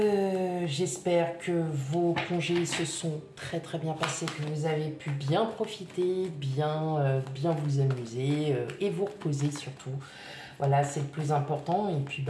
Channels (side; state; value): both; identical; correlation 1.00